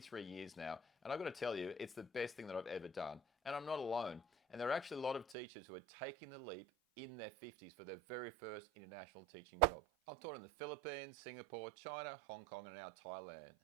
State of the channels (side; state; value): left; drops out; at 5.4 s